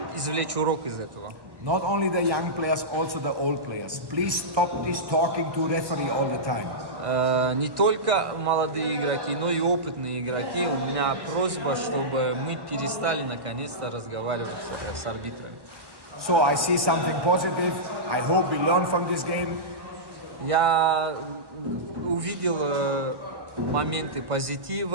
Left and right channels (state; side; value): late; left; 1.1 ms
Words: извлечь урок из этого. Not only the young players, also the old players. Please stop this talking to referee all the time. Не только молодые игроки, но и опытные игроки. У меня просьба, чтобы мы перестали наконец-то разговаривать с арбитрами. So I see something positive. I hope we learn from this game. Я увидел моменты